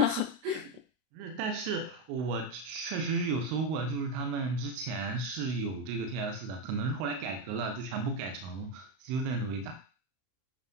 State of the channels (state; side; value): late; left; 32 ms